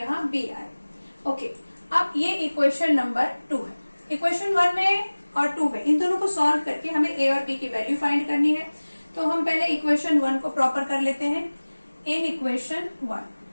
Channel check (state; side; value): inverted; both; correlation -1.00